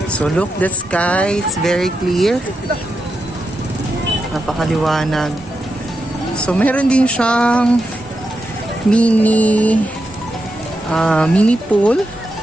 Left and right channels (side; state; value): both; normal; correlation 0.87